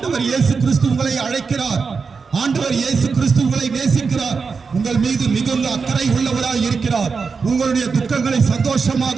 இயேசு கிறிஸ்து உங்களை அழைக்கிறார். ஆண்டவர் இயேசு கிறிஸ்து உங்களை நேசிக்கிறார். உங்கள் மீது மிகுந்த அக்கறை உள்ளவராய் இருக்கிறார். உங்களுடைய துக்கங்களை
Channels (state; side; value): quieter; left; 5.1 dB